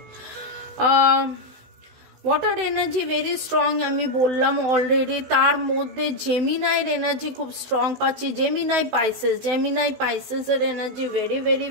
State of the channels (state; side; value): late; left; 16 ms